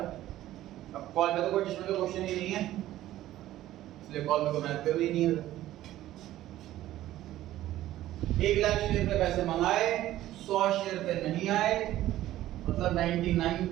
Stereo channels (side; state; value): left; quieter; 14.2 dB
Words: अब कॉल पे तो कोई एडजस्टमेंट का क्वेश्चन ही नहीं है, इसलिए कॉल पे को मेहनत करनी नहीं है। 1 लाख शेयर पे पैसे मंगाए, 100 शेयर पे नहीं आए, मतलब